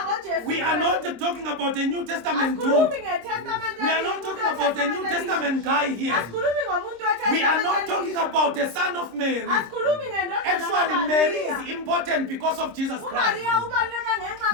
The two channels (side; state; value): left; late; 26 ms